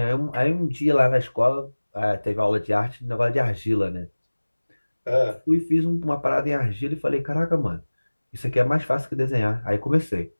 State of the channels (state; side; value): inverted; both; correlation -1.00